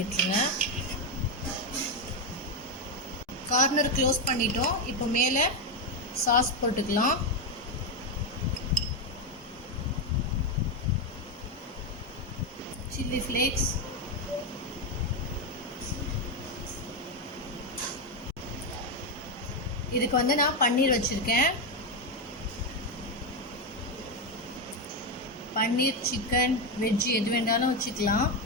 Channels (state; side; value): normal; both; correlation 0.07